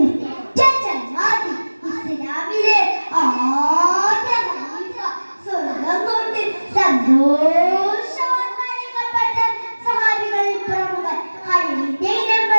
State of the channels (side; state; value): both; inverted; correlation -1.00